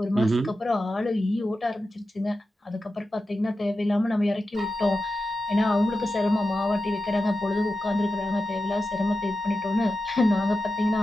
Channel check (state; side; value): normal; both; correlation 0.91